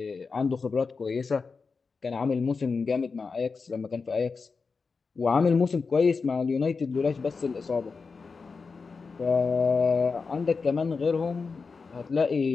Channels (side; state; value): right; quieter; 4.7 dB